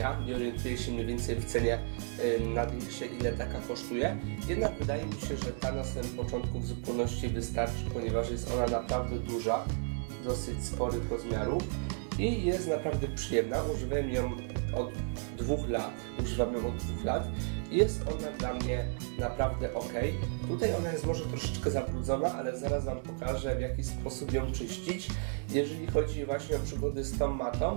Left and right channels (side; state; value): left; silent; 56 dB below the other